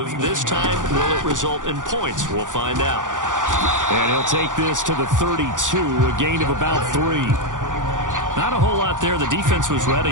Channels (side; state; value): left; late; 0.87 ms